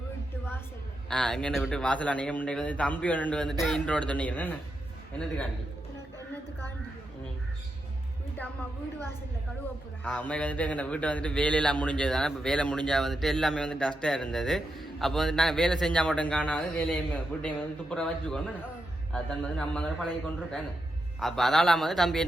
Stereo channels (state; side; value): normal; both; correlation 0.85